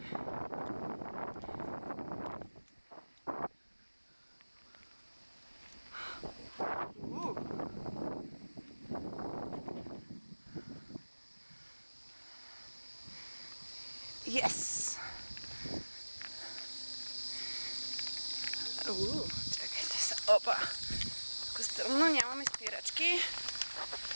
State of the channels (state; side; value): inverted; both; correlation -1.00